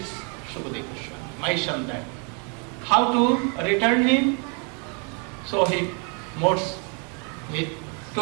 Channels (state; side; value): quieter; left; 36.8 dB